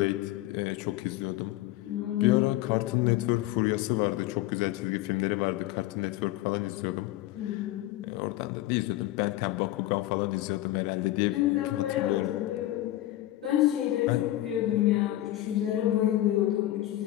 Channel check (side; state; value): right; quieter; 15.4 dB